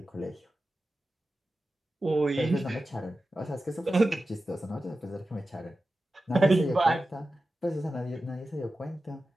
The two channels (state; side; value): normal; both; correlation 0.93